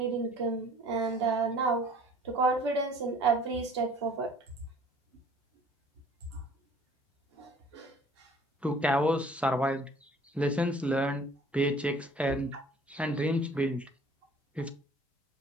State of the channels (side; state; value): both; normal; correlation 0.52